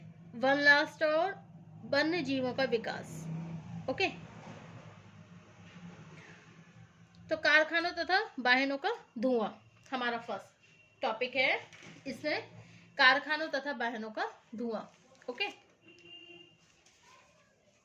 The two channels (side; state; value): both; identical; correlation 1.00